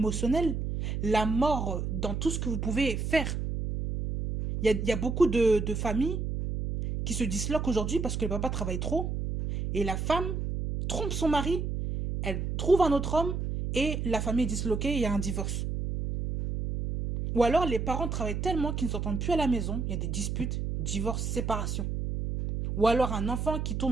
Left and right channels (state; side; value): noise; right; hum, 2 dB below the sound